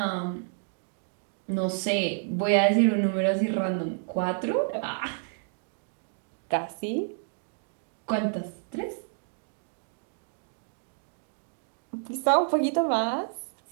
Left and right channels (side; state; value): left; silent; digital silence